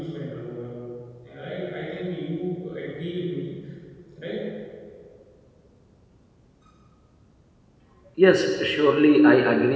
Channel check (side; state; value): both; identical; correlation 1.00